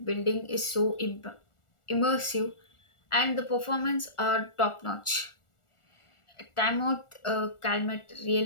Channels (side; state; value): right; late; 1.4 ms